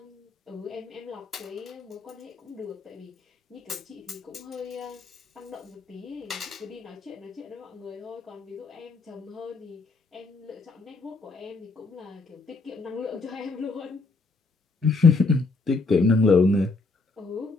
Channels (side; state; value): right; quieter; 3.7 dB